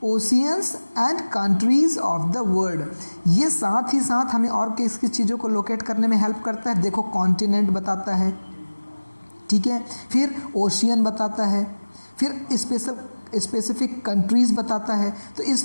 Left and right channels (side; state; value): both; inverted; correlation -1.00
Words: oceans and countries of the world. ये साथ ही साथ हमें और किस किस चीज़ों को locate करने में हेल्प करता है? देखो, कॉन्टिनेंट बताता है, ठीक है, फिर ओशियन बताता है, फिर स्पेसिफिक कंट्रीज़ बताता है। तो